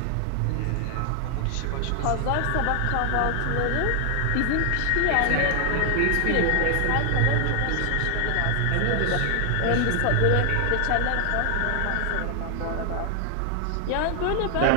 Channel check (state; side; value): different; both; correlation 0.00